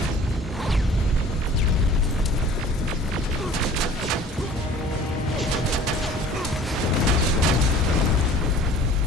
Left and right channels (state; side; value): normal; both; correlation 0.48